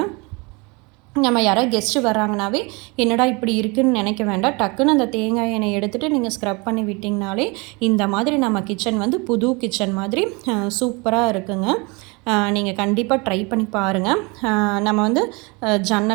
நம்ம யாராவது கெஸ்ட்டு வராங்கனாவே என்னடா இப்படி இருக்குதுன்னு நினைக்க வேண்டாம். டக்குன்னு அந்த தேங்காய் எண்ணெய் எடுத்துகிட்டு நீங்கள் ஸ்க்ரப் பண்ணி விட்டிங்கனாலே இந்த மாதிரி நம்ம கிச்சன் வந்து புது கிச்சன் மாதிரி சூப்பராக இருக்குங்க. நீங்கள் கண்டிப்பாக ட்ரை பண்ணி பாருங்கள். நம்ம வந்து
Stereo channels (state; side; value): quieter; left; 28.3 dB